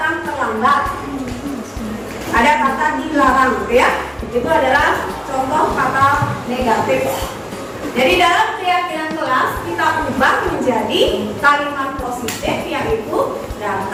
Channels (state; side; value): identical; both; correlation 1.00